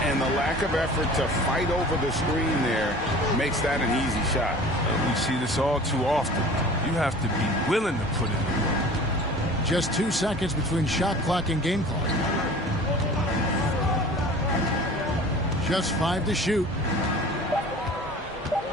And the lack of effort to fight over the screen there makes that an easy shot. We see this all too often. You have to be willing to put in the work. Just 2 seconds between shot clock and game clock. Just 5 to shoot.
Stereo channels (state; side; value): normal; both; correlation 0.43